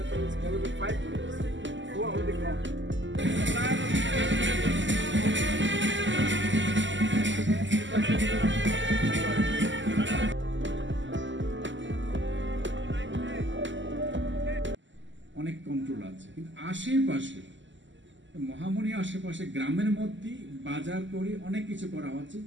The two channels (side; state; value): left; late; 0.54 ms